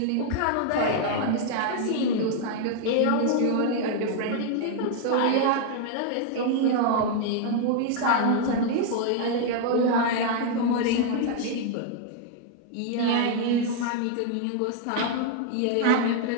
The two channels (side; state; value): both; different; correlation 0.00